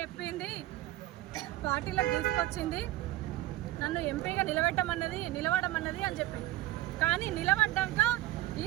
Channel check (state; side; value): quieter; left; 16.1 dB